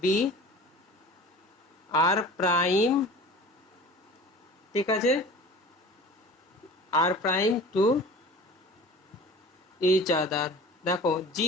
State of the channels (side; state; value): both; normal; correlation 0.40